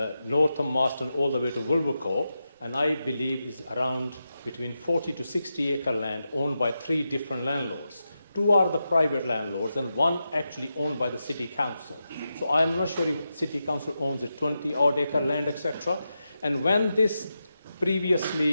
north of Marston, all the way to Wolvercote, and I believe is around between 40 to 60 acre land owned by 3 different landlords. 2 are the private landlords and 1 actually owned by the city council. So I am not sure if city council owns a 20 odd acre land, etc. And when this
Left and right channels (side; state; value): both; inverted; correlation -0.89